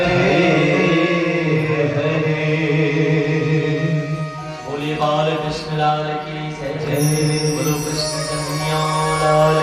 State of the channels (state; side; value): identical; both; correlation 1.00